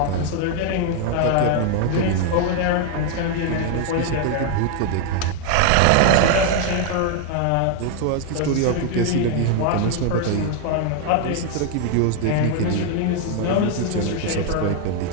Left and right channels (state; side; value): different; both; correlation 0.00